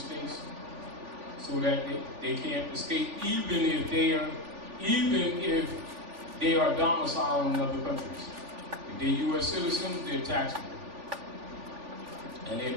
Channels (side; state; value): left; late; 3.4 ms